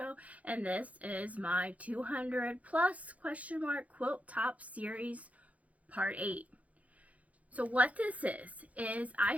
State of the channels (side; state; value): left; late; 0.069 ms